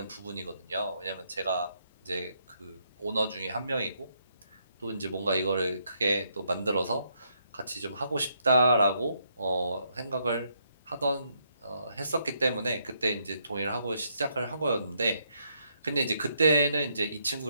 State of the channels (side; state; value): both; inverted; correlation -0.75